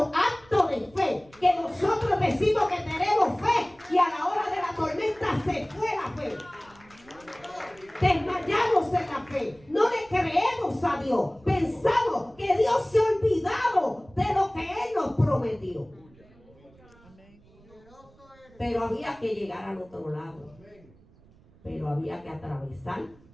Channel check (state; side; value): noise; right; rumble, 27 dB below the sound